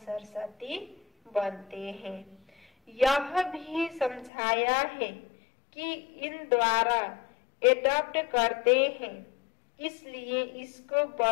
बनते हैं। यह भी समझाया है कि इन द्वारा एडॉप्ट करते हैं, इसलिए इसको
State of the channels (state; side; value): drops out; right; at 4.3 s